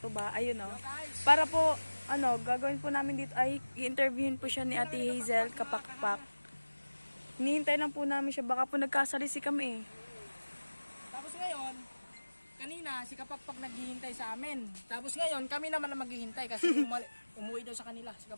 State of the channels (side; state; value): both; inverted; correlation -1.00